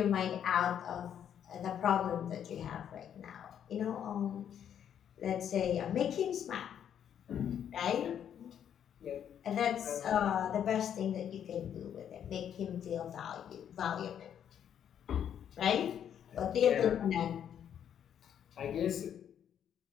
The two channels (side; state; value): right; quieter; 9.2 dB